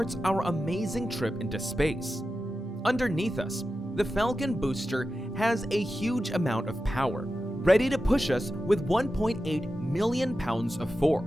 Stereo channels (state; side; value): normal; both; correlation 0.92